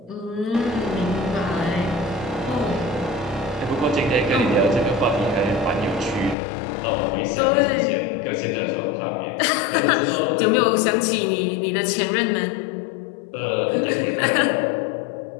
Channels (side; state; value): right; drops out; at 6.4 s